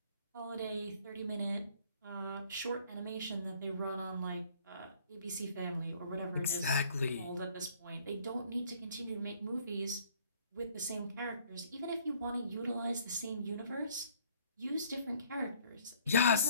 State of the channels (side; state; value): both; inverted; correlation -0.59